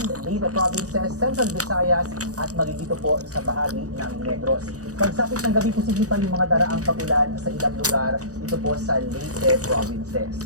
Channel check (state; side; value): late; left; 0.66 ms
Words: Leyte Provinces, Central Visayas at magigito po sa bahagi ng Negros. Pagsapit ng gabi, posible pa yung mga daraang pagulan sa ilang lugar dito po sa Leyte